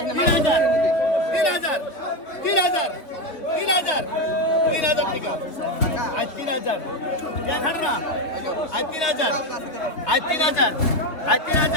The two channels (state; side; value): late; right; 3.7 ms